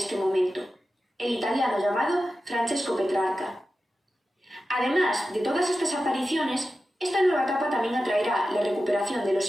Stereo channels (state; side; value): normal; both; correlation 0.92